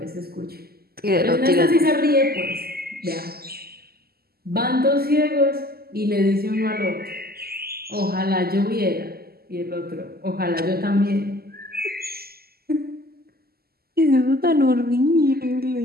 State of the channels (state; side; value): late; left; 0.45 ms